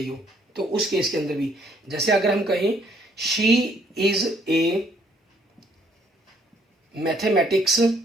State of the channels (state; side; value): normal; both; correlation 0.65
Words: हो, तो उस केस के अंदर भी, जैसे अगर हम कहें she is a mathematics